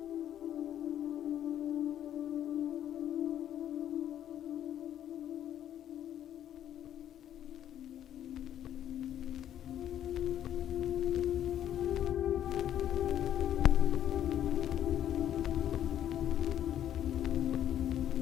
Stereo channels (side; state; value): right; quieter; 10.8 dB